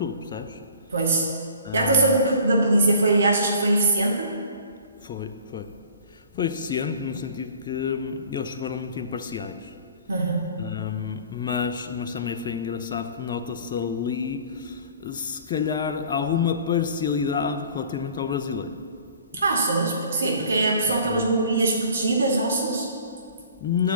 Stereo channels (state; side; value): inverted; both; correlation -0.48